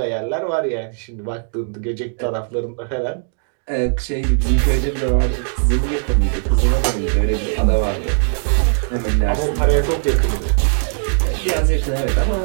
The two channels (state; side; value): silent; left; 67 dB below the other